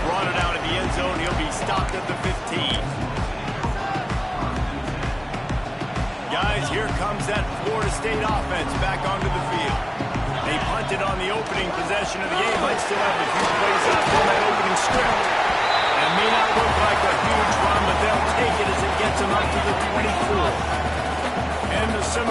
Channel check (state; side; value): identical; both; correlation 1.00